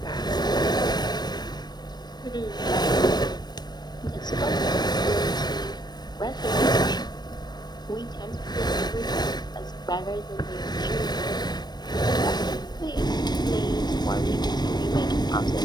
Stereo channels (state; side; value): late; right; 0.20 ms